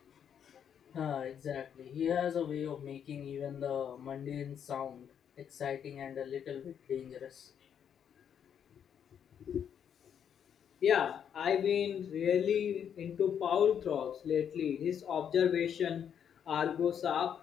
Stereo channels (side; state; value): right; quieter; 8.4 dB